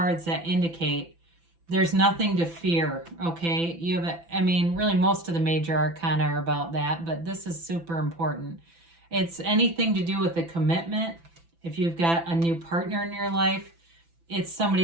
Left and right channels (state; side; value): late; left; 5.9 ms